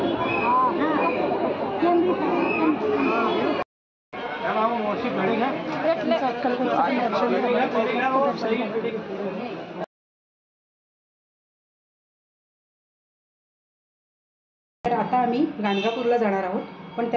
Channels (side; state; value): both; identical; correlation 1.00